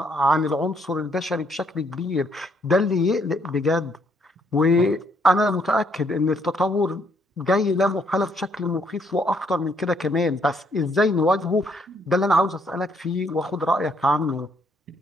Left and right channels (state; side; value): normal; both; correlation 0.70